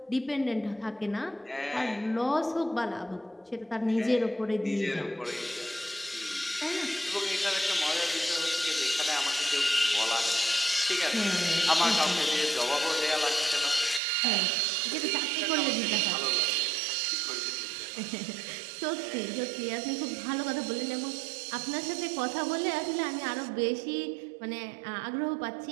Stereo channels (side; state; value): left; drops out; at 14.0 s